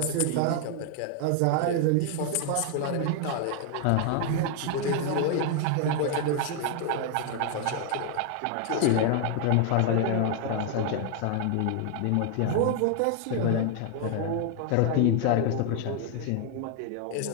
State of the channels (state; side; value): different; both; correlation 0.00